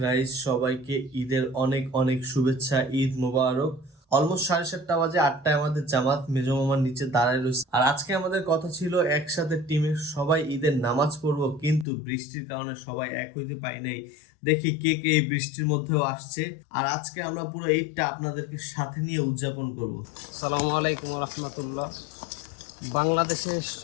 গাইস, সবাইকে ঈদের অনেক অনেক শুভেচ্ছা। ঈদ মুবারক। অলমোস্ট 7:30 বাজে, 8টায় আমাদের জামাত মেজো মামার নিচে দাঁড়ায় রয়েছে। আর আজকে আমাদের কথা ছিল একসাথে টিমের সবাই ঈদের নামাজ পড়বো, কিন্তু বৃষ্টির কারণে সবাই এক হইতে পারি নাই। দেখি কে কে এই বৃষ্টির মধ্যেও আসছে। আর আজকে আমরা পুরো ঈদটা আপনাদেরকে সাথে নিয়ে উদযাপন করব। আসসালামু আলাইকুম ওয়া রাহমাতুল্লাহ। বাংলাদেশের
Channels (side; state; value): right; drops out; at 11.9 s